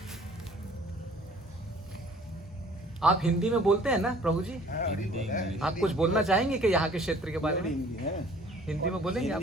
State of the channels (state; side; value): normal; both; correlation 0.53